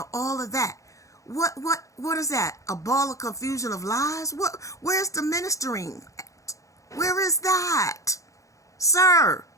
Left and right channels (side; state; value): right; late; 0.16 ms